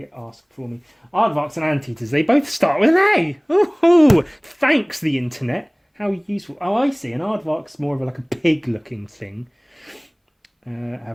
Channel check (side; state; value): both; identical; correlation 1.00